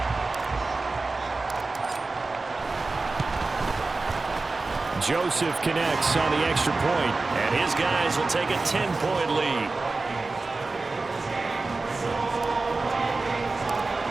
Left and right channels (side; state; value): left; quieter; 3.6 dB